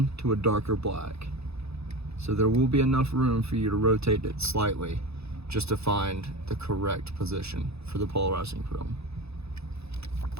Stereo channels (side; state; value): left; late; 0.79 ms